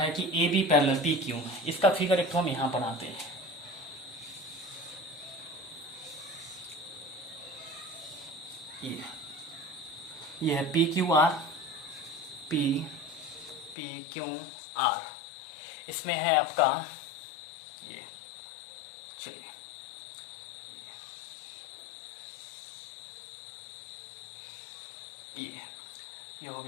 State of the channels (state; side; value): drops out; right; at 13.8 s